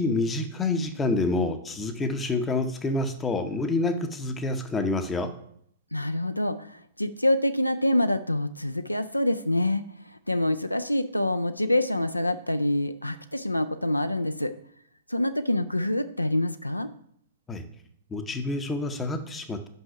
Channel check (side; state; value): both; inverted; correlation -0.52